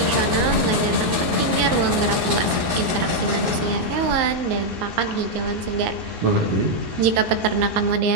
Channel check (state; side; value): late; left; 13 ms